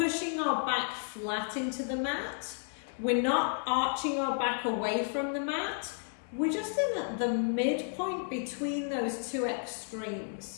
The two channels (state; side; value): silent; right; digital silence